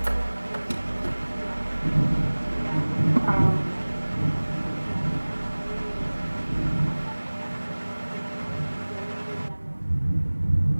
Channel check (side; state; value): both; inverted; correlation -1.00